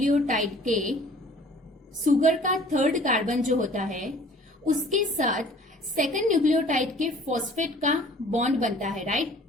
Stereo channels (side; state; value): both; normal; correlation 0.51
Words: के शुगर का थर्ड कार्बन जो होता है उसके साथ सेकंड न्यूक्लियोटाइड के फॉस्फेट का बॉन्ड बनता है, राइट।